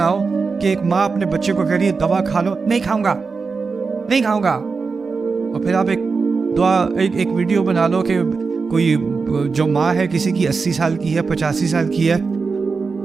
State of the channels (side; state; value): left; quieter; 4.7 dB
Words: کہ ایک ماں اپنے بچے کو کہہ رہی ہے دوا کھا لو، نہیں کھاؤں گا، نہیں کھاؤں گا، اور پھر آپ ایک ویڈیو بنا لو کہ کوئی جو ماں ہے کسی کی 80 سال کی ہے، 85 سال کی ہے،